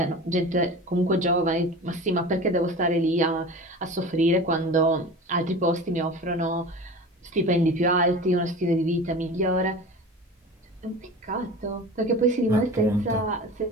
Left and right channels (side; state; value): both; normal; correlation 0.35